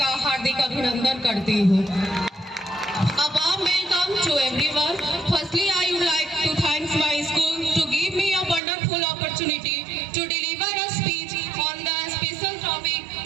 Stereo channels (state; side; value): drops out; left; at 8.6 s